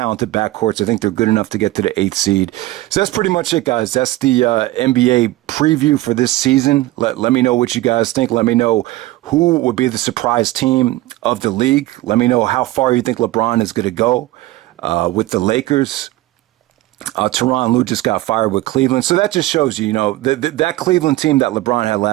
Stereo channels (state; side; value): quieter; left; 17.3 dB